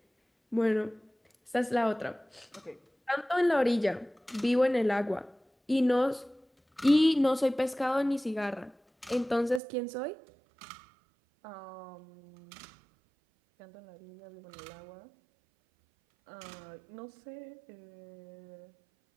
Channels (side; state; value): left; drops out; at 9.6 s